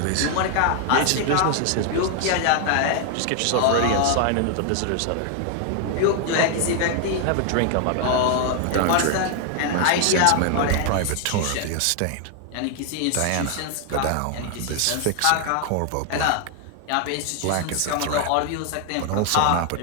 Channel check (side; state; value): both; different; correlation 0.00